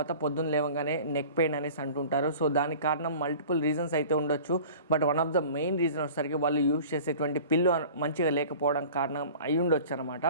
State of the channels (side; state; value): both; inverted; correlation -0.43